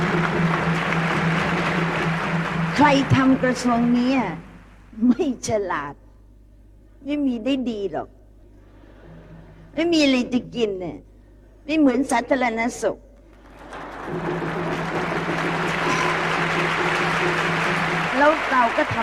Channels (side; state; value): both; identical; correlation 1.00